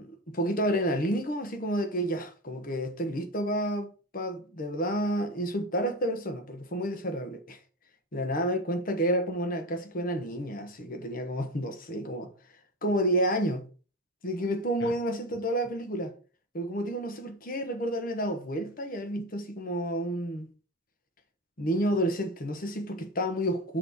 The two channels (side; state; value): both; normal; correlation 0.25